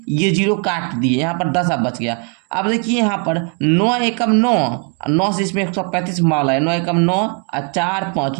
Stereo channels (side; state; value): left; quieter; 37.0 dB